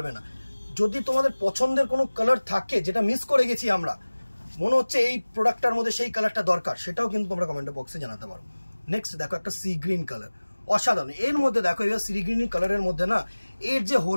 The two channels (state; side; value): inverted; both; correlation -1.00